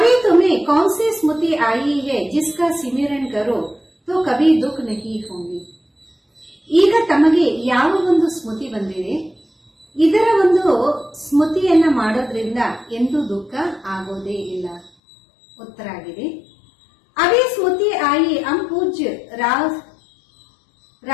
तुम्हें कौन सी स्मृति आई है जिसका सिमरन करो तो कभी दुख नहीं होंगे. ಈಗ ತಮಗೆ ಯಾವ ಒಂದು ಸ್ಮೃತಿ ಬಂದಿದೆ, ಇದರ ಒಂದು ಸ್ಮೃತಿಯನ್ನ ಮಾಡೋದ್ರಿಂದ ಎಂದೂ ದುಃಖ ಆಗೋದೇ ಇಲ್ಲ. ಉತ್ತರ ಆಗಿದೆ, अभी स्मृति आई हम पूज्य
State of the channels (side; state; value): right; drops out; at 14.9 s